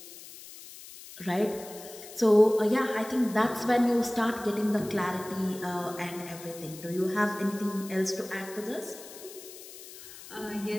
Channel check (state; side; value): noise; left; hiss, 16 dB below the sound